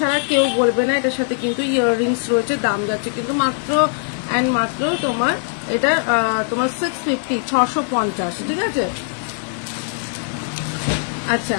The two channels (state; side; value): silent; right; digital silence